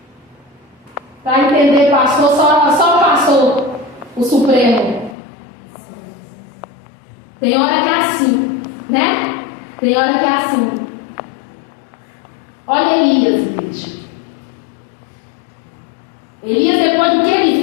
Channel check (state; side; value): drops out; right; at 5.2 s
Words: para entender pastor, só pastor, o Supremo. Tem hora que é assim, né? Tem hora que é assim. Olha Elias, gente. Elias, depois do que